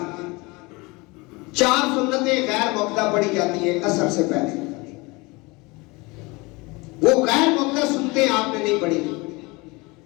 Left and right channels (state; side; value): quieter; right; 25.1 dB